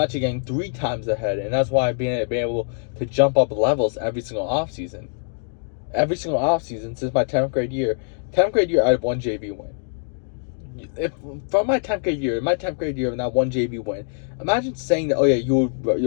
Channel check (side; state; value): right; silent; digital silence